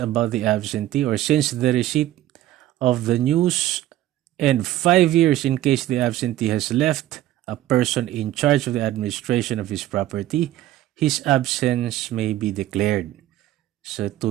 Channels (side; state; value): left; quieter; 14.1 dB